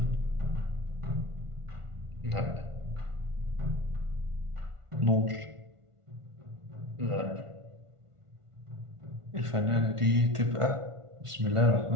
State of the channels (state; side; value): late; left; 1.5 ms